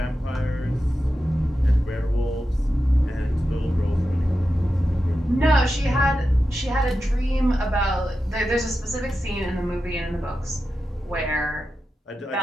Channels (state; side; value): normal; both; correlation 0.91